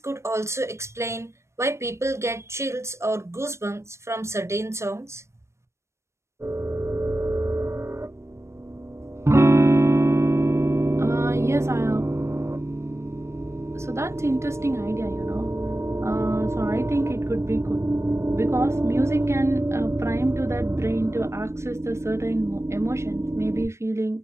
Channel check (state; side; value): late; left; 0.13 ms